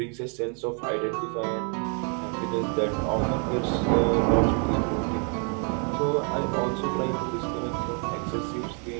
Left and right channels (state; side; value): quieter; left; 39.2 dB